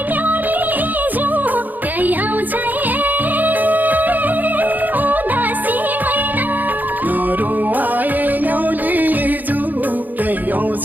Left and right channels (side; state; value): left; late; 0.084 ms